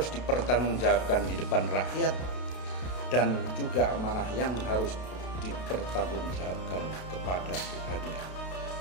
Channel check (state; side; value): late; right; 32 ms